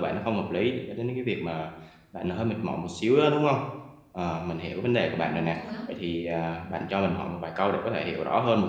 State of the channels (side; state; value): both; identical; correlation 1.00